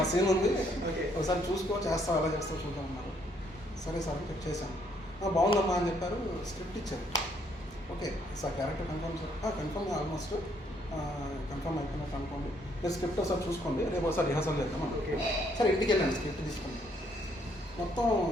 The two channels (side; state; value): both; normal; correlation 0.69